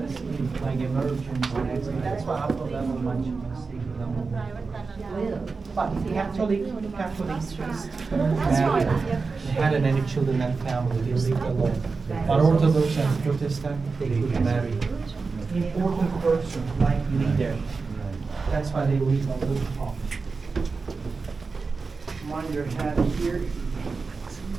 like emergency and exit. That's why upper level much mistake level. But Catholic priest married, they had any children and family, they lived alone. But Orthodox and Protestant, they could marry. Important person, like leader. That's why they live on the top. Mind your head here.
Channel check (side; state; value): left; quieter; 4.4 dB